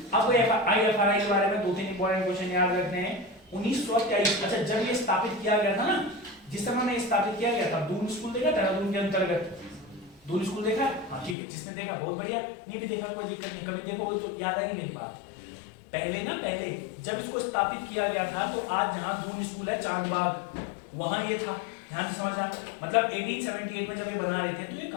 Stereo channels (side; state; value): right; drops out; at 11.4 s